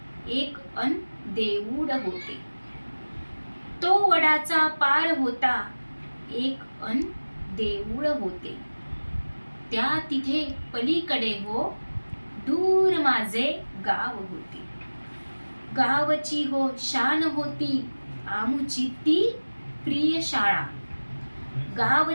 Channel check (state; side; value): inverted; both; correlation -1.00